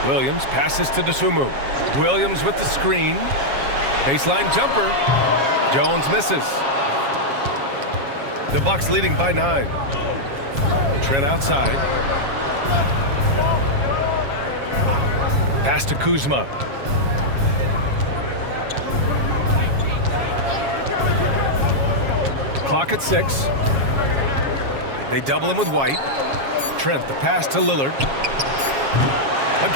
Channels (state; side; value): late; left; 7.3 ms